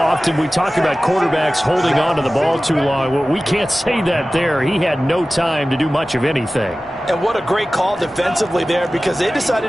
we talk about quarterbacks holding on to the ball too long. Well, we can't say that there. He had no time to do much of anything. And what a great call defensively there because they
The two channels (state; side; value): normal; both; correlation 0.96